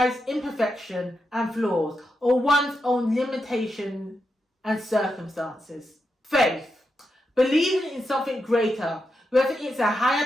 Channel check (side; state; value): both; normal; correlation 0.86